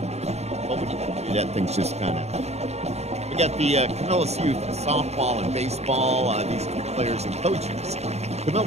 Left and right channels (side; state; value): left; late; 0.31 ms